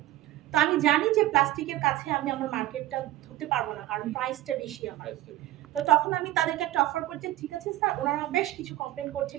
তো আমি জানি যে প্লাস্টিকের কাছে আমি আমার মার্কেটটা ধরতে পারবো না, কারণ প্রাইসটা বেশি আমার। তো তখন আমি তাদেরকে একটা অফার করছি, ঠিক আছে স্যার। ওনারা বেশ কিছু কমপ্লেন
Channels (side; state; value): left; quieter; 15.2 dB